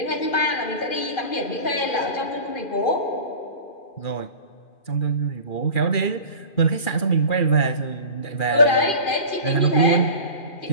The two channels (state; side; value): late; right; 2.5 ms